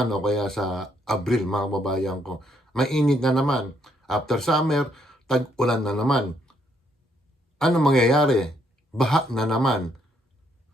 o kaya sa Abril mga kababayan ko. Mainit na naman. After summer, tag-ulan na naman. Ano mangyayari? Baha na naman.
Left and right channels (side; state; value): both; normal; correlation 0.72